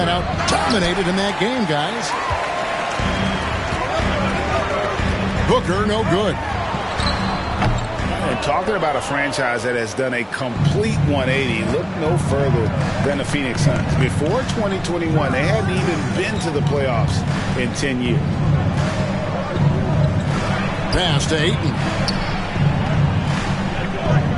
out dominated in that game, guys. Booker, no good. And talking about a franchise that has done a complete 180, look no further than the Phoenix Suns. Before 2021, they hadn't even been to the playoffs in 10 years. Pass to Ayton.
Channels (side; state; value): both; identical; correlation 1.00